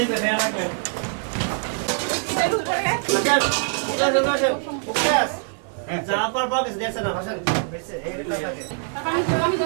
ফেরা রাখবেন জাপার বক্স দেখছ না ভাষণ বেশি এই টাকাকে আমি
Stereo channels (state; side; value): silent; left; 57 dB below the other